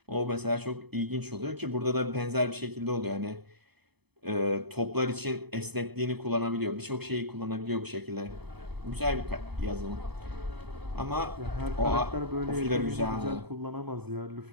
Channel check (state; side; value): late; left; 0.98 ms